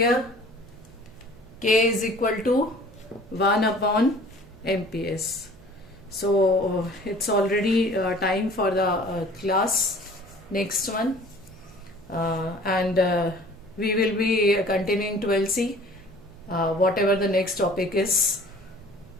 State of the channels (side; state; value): right; noise; hum, 24 dB below the sound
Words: K is equal to 1 upon MPS. So it's already time for the class. next one. And we will be continuing 12C, whatever the next topic is